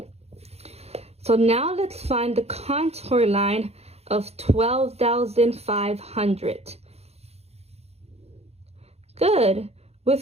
So now let's find the contour line of 12,500. Good.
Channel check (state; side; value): late; left; 0.30 ms